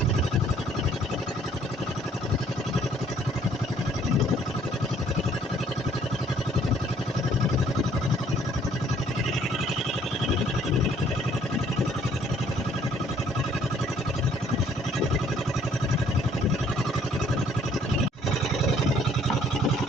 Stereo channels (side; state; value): both; normal; correlation 0.61